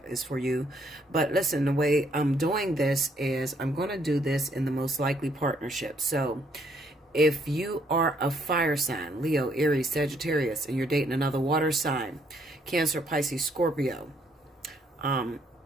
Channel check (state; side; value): normal; both; correlation 0.69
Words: is for you. But listen, the way I'm doing this is I'm going to do this in the most likely partnership. So if you are a fire sign, Leo, Aries, Sagittarius, and you're dating another water sign, Cancer, Pisces, Scorpio,